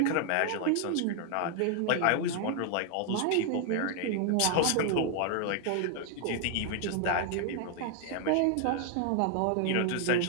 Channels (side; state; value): both; different; correlation 0.00